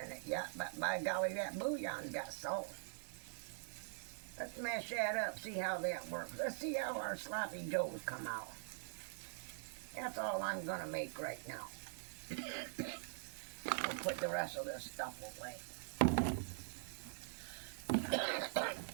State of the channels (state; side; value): silent; left; digital silence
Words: in it yet, but by golly, that bouillon's got salt. Let's mash that up, see how that works. Let's see how our sloppy joes come out. That's all I'm going to make right now. We'll put the rest of this stuff away.